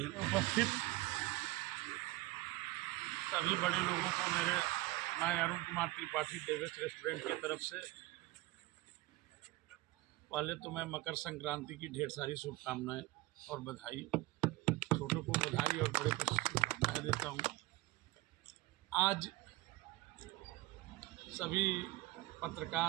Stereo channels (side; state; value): left; quieter; 19.3 dB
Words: उपस्थित सभी बड़े लोगों को मैं अरुण कुमार त्रिपाठी देवेश रेस्टोरेंट की तरफ से पहले तो मैं मकर संक्रांति की ढेर सारी शुभकामनाएं और बधाई, छोटों को बधाई और बड़े को शुभकामनाएं देता हूं। आज सभी